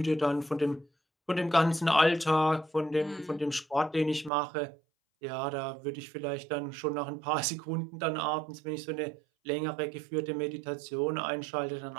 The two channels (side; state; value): left; drops out; at 4.3 s